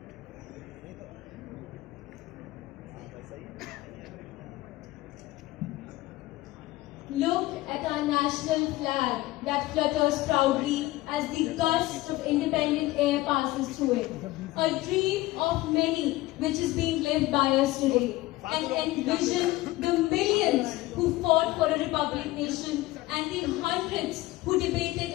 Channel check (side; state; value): right; quieter; 18.3 dB